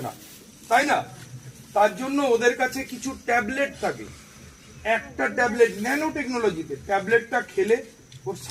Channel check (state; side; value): identical; both; correlation 1.00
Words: না, তাই না? তার জন্য ওদের কাছে কিছু ট্যাবলেট থাকে, একটা ট্যাবলেট ন্যানো টেকনোলজিতে, ট্যাবলেটটা খেলে ওর